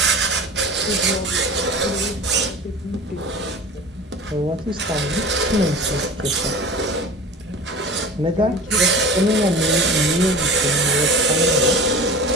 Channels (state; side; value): normal; both; correlation 0.37